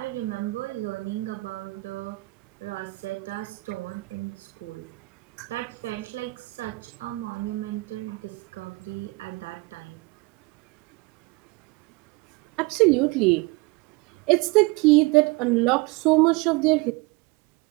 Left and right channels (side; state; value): left; quieter; 24.1 dB